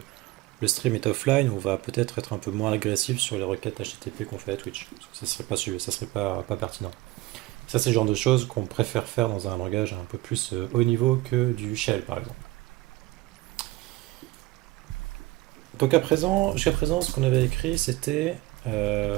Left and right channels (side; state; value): left; quieter; 18.9 dB